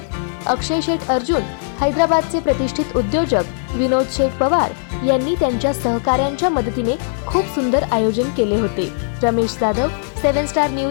अक्षय शेठ अर्जुन, हैदराबादचे प्रतिष्ठित उद्योजक विनोद शेठ पवार यांनी त्यांच्या सहकाऱ्यांच्या मदतीने खूप सुंदर आयोजन केले होते. रमेश जाधव, 7 स्टार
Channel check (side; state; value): right; silent; digital silence